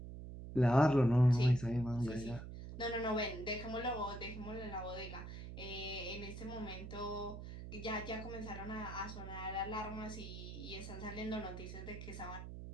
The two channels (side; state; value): right; noise; hum, 10 dB below the sound